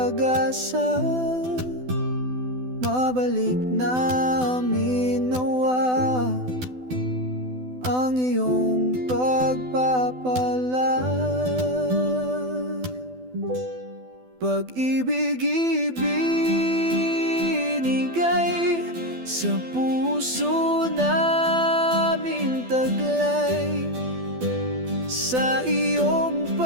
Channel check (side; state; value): left; late; 12 ms